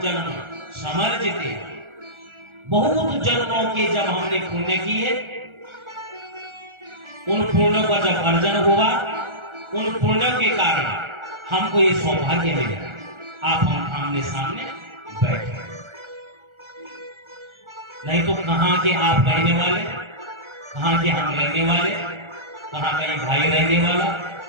समर्जिते, बहुत जन्मों के जब हमने पुण्य किए, उन पुण्यों का जब अर्जन हुआ, उन पुण्यों के कारण हमको ये सौभाग्य मिला, आप हम आमने सामने बैठे। नहीं तो कहां के आप रहने वाले, कहां के हम रहने वाले, कहां का ये भाई रहने वाला,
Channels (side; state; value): left; late; 1.4 ms